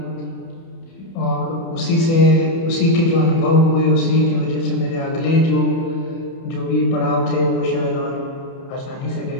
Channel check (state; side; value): late; right; 30 ms